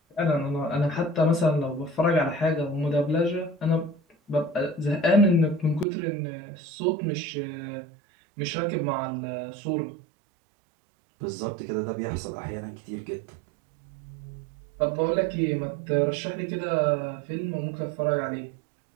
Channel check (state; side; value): drops out; left; at 5.9 s